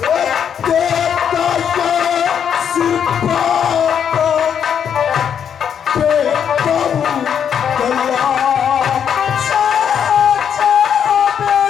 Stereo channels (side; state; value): right; quieter; 8.2 dB